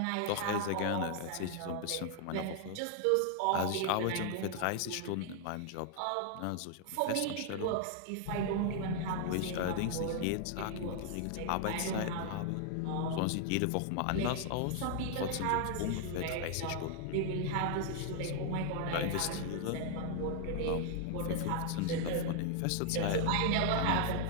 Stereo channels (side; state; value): both; different; correlation 0.00